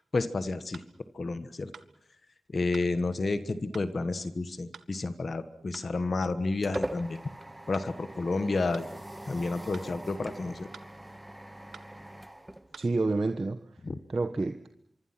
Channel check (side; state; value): both; normal; correlation 0.94